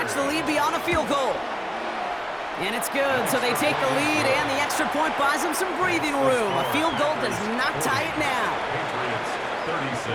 the lead beyond a field goal. And it's good, so they take the lead, and the extra point buys them some breathing room. A field goal does not tie it now. Patriots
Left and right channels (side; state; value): both; identical; correlation 1.00